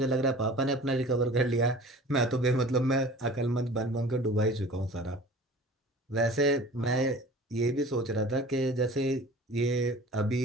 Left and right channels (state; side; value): normal; both; correlation 0.43